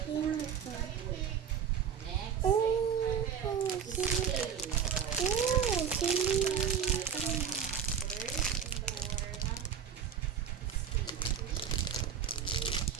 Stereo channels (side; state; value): left; quieter; 7.7 dB